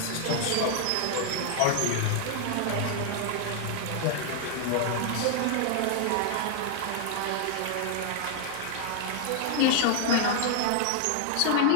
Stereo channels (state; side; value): different; both; correlation 0.00